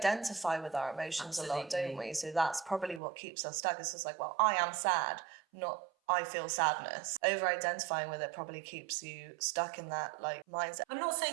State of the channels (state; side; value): drops out; left; at 3.0 s